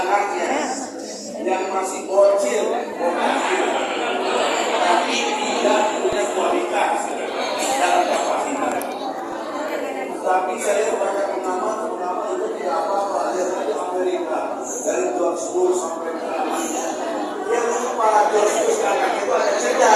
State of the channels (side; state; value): both; identical; correlation 1.00